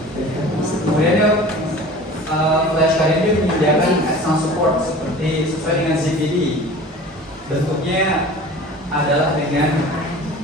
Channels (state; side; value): normal; both; correlation 0.41